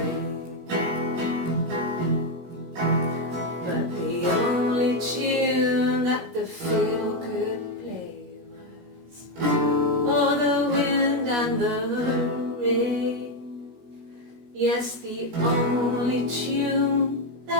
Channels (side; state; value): left; late; 17 ms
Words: Tune that the fiddle could play was, oh, the wind and the rain. Yes, the only tune